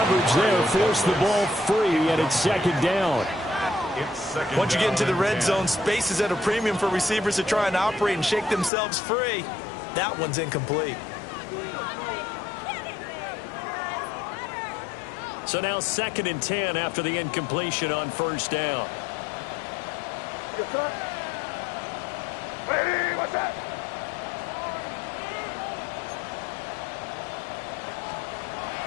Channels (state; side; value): drops out; right; at 8.7 s